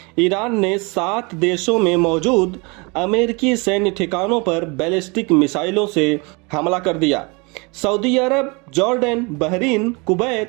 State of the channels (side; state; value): left; quieter; 28.9 dB